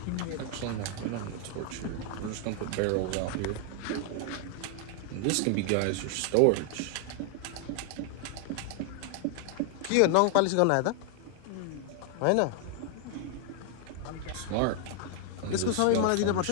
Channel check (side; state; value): both; different; correlation 0.00